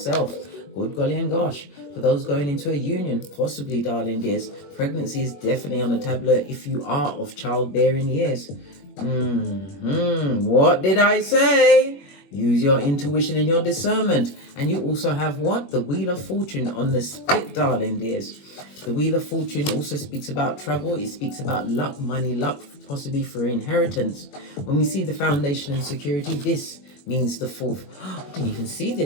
Good golly and gosh. For those going into a union, possibly, darling dears, pregnancy is definitely on the tableau if you are of childbearing years. What did I say? Use your intuition and your discernment. And you also have what? The Wheel of Fortune on the split, darling dears. The Wheel of Fortune also speaks about travel. It speaks about luck, money, luck, possibly for inheritance. When we see the foundation and security, this means the fourth. I didn't even see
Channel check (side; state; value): right; late; 21 ms